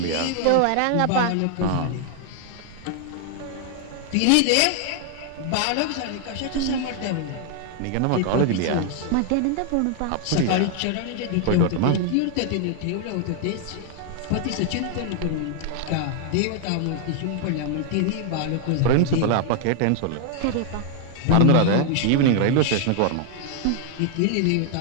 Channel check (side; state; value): both; different; correlation 0.00